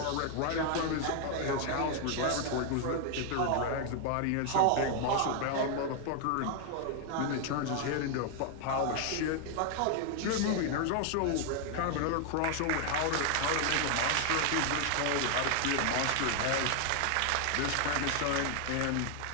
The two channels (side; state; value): both; different; correlation 0.00